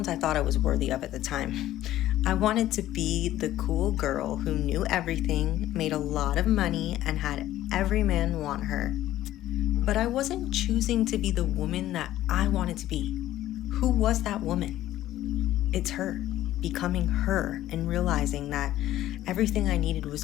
I thought I was worthy of at the time. I wanted to be the cool girl who knew everything, made a lot of money, and had every man want her. But I wasn't choosing to be the woman that I wanted to be. Who was that woman? It's her, becoming her and realizing that everything I needed was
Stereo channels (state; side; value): quieter; right; 13.9 dB